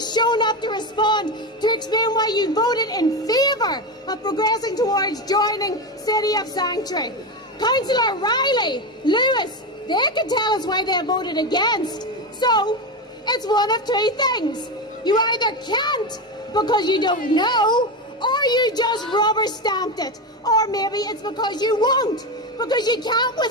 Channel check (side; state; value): both; normal; correlation 0.16